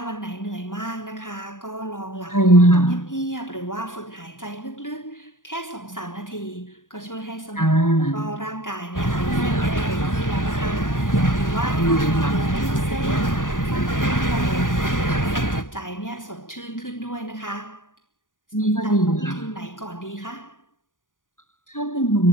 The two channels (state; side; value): late; right; 0.88 ms